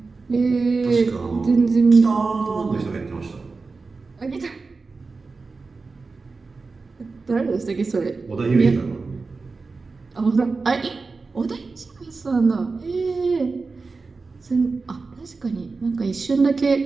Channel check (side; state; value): left; quieter; 4.1 dB